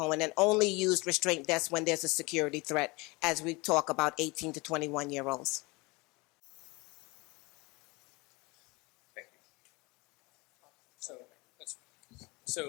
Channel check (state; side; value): quieter; right; 25.1 dB